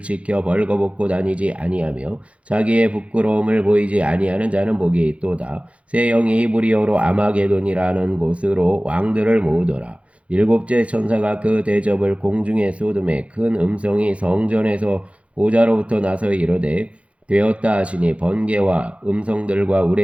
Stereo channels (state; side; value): late; left; 0.062 ms